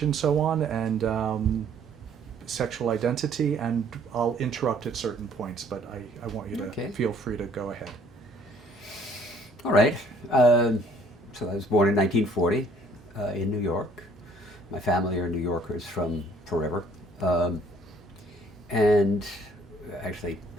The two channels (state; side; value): normal; both; correlation 0.60